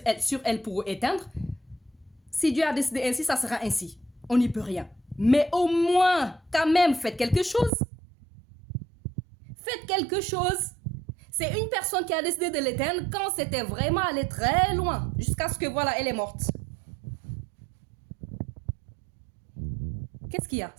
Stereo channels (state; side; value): drops out; left; at 7.7 s